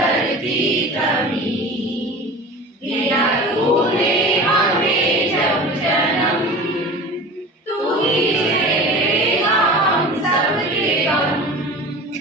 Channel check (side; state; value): both; normal; correlation 0.36